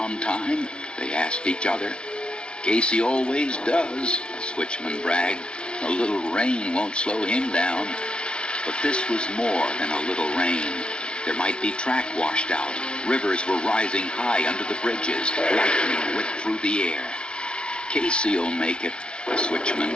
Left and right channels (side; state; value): right; late; 0.056 ms